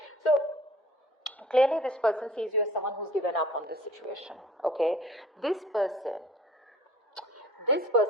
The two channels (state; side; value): normal; both; correlation 0.50